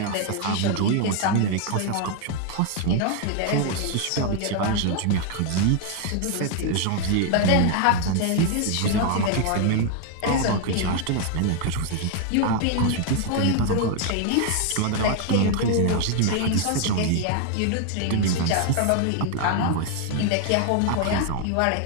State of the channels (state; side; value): different; both; correlation 0.00